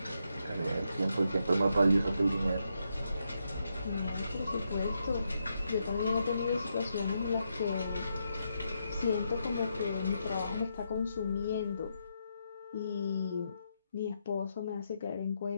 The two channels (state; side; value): inverted; both; correlation -0.81